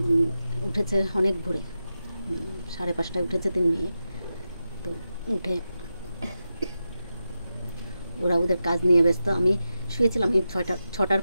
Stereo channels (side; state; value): both; inverted; correlation -0.90